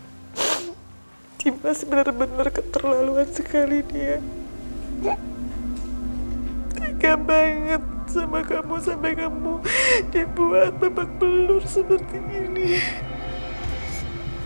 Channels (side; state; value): both; inverted; correlation -1.00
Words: Dimas benar-benar keterlaluan sekali dia. Tega banget sama kamu sampai kamu dibuat babak belur seperti ini.